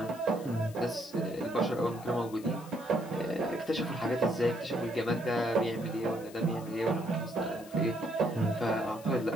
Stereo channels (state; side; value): noise; left; hiss, 20 dB below the sound